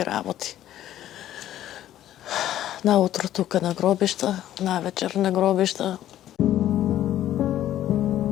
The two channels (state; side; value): quieter; right; 12.5 dB